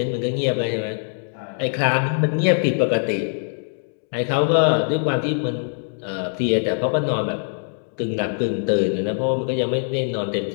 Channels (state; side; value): silent; right; digital silence